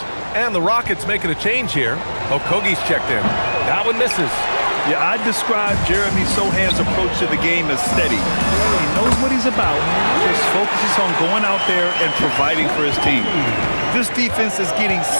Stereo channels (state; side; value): inverted; both; correlation -1.00